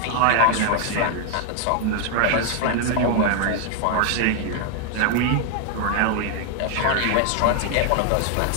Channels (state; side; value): different; both; correlation 0.00